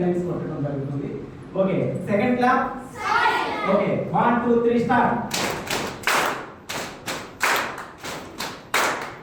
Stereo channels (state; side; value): identical; both; correlation 1.00